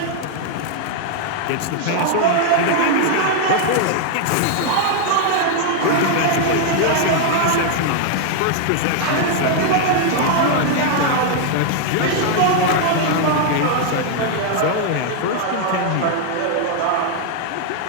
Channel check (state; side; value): different; both; correlation 0.00